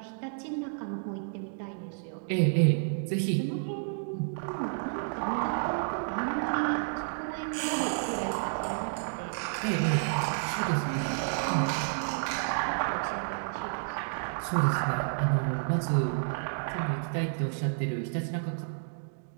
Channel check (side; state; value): left; silent; digital silence